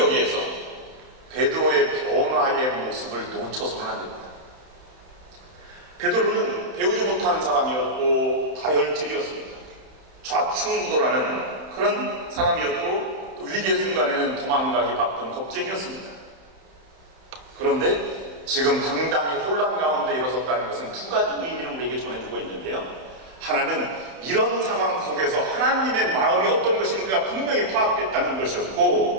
베드로의 변화의 모습을 놓쳐서는 안 됩니다. 베드로는 배우지 못한 사람이었고 다혈질이었습니다. 좌충우돌하는 그런 사람이었고 또 위기의 순간에는 도망가기 바쁜 겁쟁이였습니다. 그런데 지금 당당히 혼란 가운데 일어섰다는 것은 두 가지 의미를 우리에게 전해주고 있는데요. 하나는 이런 상황 속에서 하나님의 마음이 어떤 것인가 분명히 파악됐다는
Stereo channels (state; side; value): late; left; 31 ms